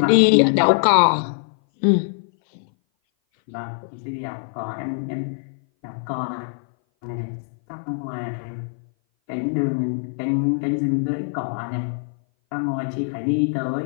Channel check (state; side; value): silent; right; 58 dB below the other